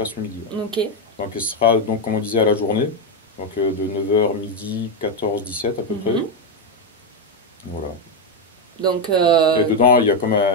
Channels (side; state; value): both; normal; correlation 0.05